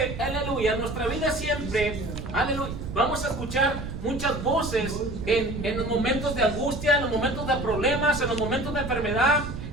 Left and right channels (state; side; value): noise; right; rumble, 7 dB below the sound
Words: aleluya, en nuestra vida siempre, aleluya, vamos a escuchar muchas voces en los momentos de angustia, en los momentos de problemas, en los momentos de enfermedad,